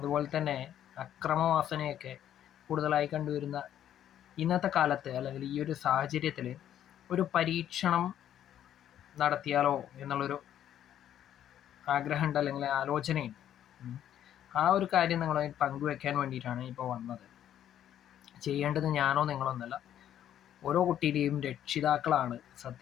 തന്നെ അക്രമവാസനയൊക്കെ കൂടുതലായി കണ്ടുവരുന്ന ഇന്നത്തെ കാലത്ത് അല്ലെങ്കിൽ ഈ ഒരു സാഹചര്യത്തിൽ ഒരു പരീക്ഷണം നടത്തിയാലോ എന്നുള്ളൊരു ആഗ്രഹമുണ്ട് അല്ലെങ്കിൽ ആലോചനയുണ്ട്. ആ ഒരു കാര്യം നിങ്ങളുമായി പങ്കുവെക്കാൻ വേണ്ടിയിട്ടാണ് ഇപ്പോൾ വന്നത്. ചെയ്യേണ്ടത് ഞാനോ നിങ്ങളൊന്നല്ല, ഓരോ കുട്ടിയുടെയും രക്ഷിതാക്കളാണ്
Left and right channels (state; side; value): quieter; right; 10.8 dB